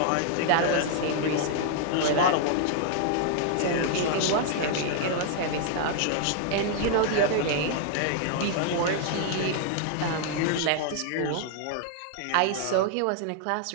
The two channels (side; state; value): both; different; correlation 0.00